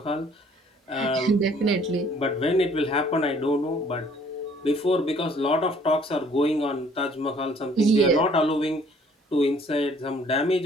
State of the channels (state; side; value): normal; both; correlation 0.58